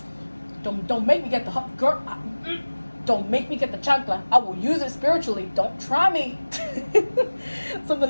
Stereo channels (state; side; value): inverted; both; correlation -1.00